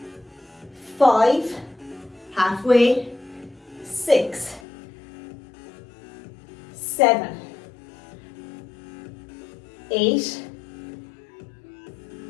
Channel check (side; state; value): right; drops out; at 4.6 s